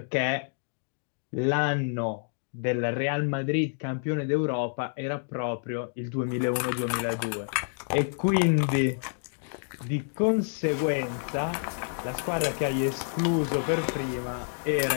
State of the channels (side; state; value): right; silent; digital silence